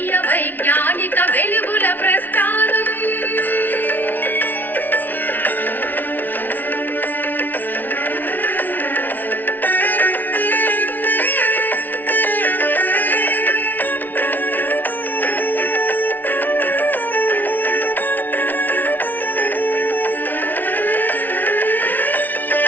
వైజ్ఞానిక వెలుగుల ప్రస్థానం.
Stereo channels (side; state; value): right; late; 0.085 ms